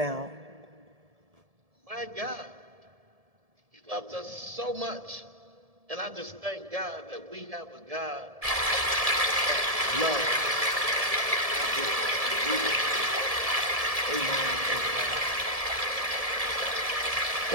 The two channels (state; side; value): late; left; 1.7 ms